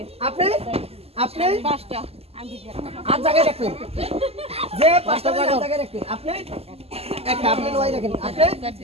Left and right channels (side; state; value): left; late; 0.29 ms